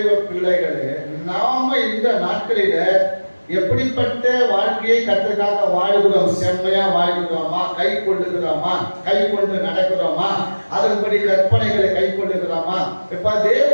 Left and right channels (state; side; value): inverted; both; correlation -1.00